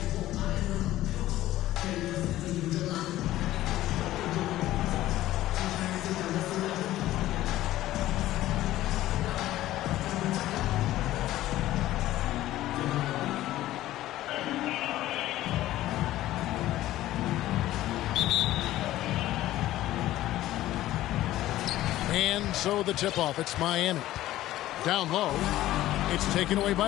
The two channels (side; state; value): right; quieter; 14.9 dB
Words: so the tip-off, it's Miami. Down low, it's taken away